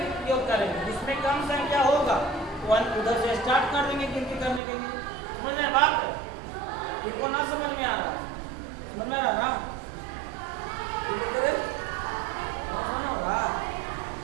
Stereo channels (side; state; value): left; drops out; at 4.6 s